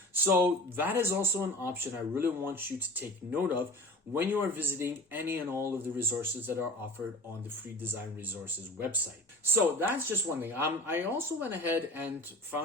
So that is also an option I really want you to take note of when you are visiting any and all of the resources that are offered on the Free Design Resources website. So that's just one thing. I also went ahead and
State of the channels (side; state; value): both; normal; correlation 0.37